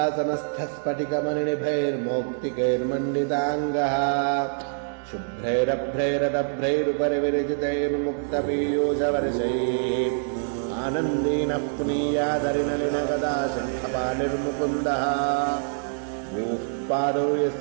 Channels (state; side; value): silent; left; digital silence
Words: शुभ्रैरभ्रैरदभ्रैरुपरि विरचितैर्मुक्तपीयूषवर्षैः आनन्दीनः पुनीयादरिनलिनगदा शङ्खपाणिर्मुकुन्दः भूः पादौ